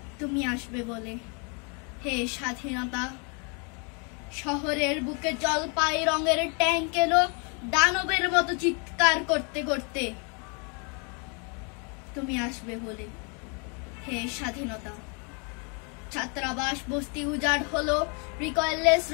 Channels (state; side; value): quieter; right; 35.9 dB